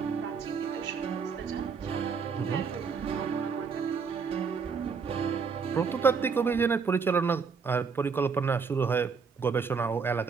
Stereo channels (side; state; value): left; quieter; 5.6 dB